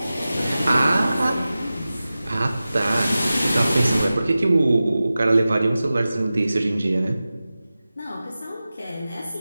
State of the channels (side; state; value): both; inverted; correlation -0.95